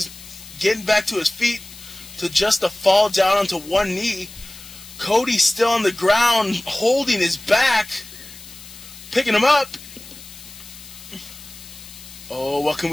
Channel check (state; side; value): noise; left; hiss, 17 dB below the sound